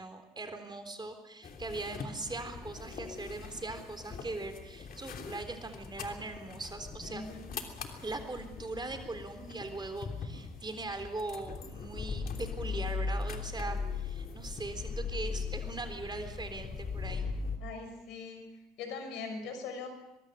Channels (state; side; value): normal; both; correlation 0.60